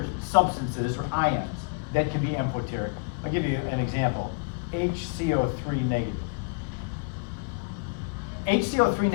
substances or ions that can be amphoteric. I'll give you an example. HCO3 negative. HCO3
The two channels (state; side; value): quieter; right; 31.1 dB